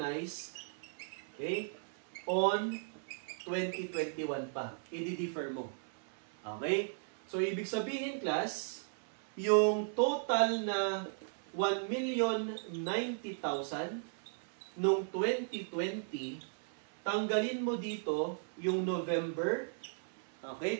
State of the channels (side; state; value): left; silent; 53 dB below the other